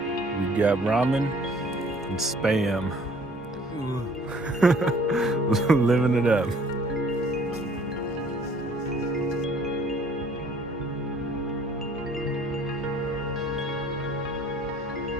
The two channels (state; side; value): normal; both; correlation 0.56